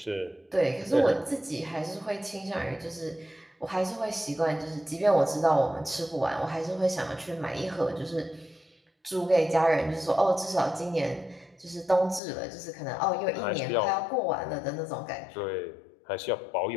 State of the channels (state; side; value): drops out; right; at 12.2 s